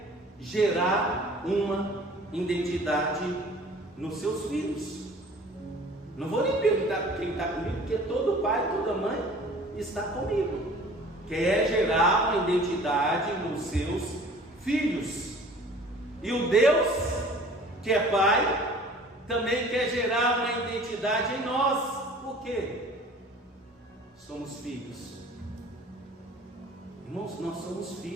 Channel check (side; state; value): both; normal; correlation 0.48